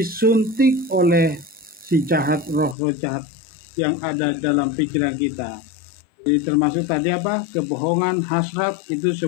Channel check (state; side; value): drops out; right; at 2.8 s